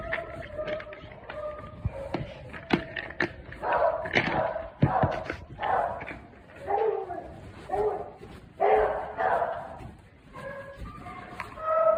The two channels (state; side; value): identical; both; correlation 1.00